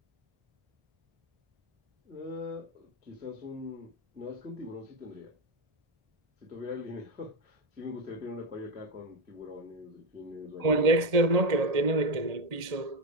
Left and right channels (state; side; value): late; left; 1.7 ms